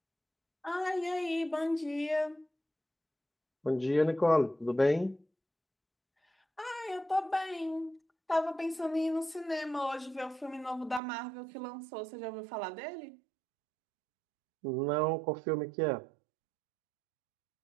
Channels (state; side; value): drops out; left; at 11.0 s